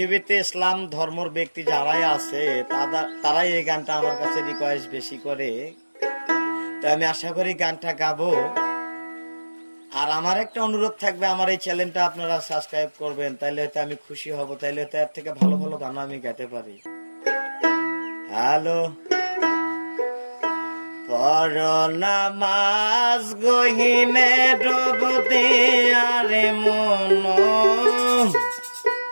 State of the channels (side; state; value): both; inverted; correlation -1.00